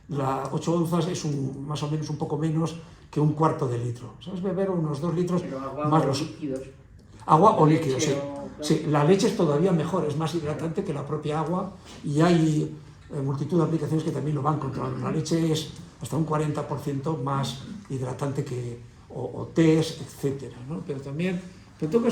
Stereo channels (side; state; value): both; identical; correlation 1.00